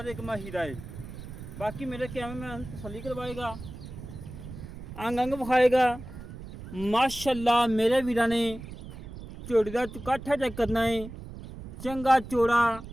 एक हीरा है। बाकी मेरे कैमरे में तसल्ली करवाएगा, अंग अंग विखाएगा। माशाल्लाह मेरे वीरा ने झोटी का चुकाठा चेक करना है, चंगा चौड़ा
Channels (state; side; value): noise; right; rumble, 12 dB below the sound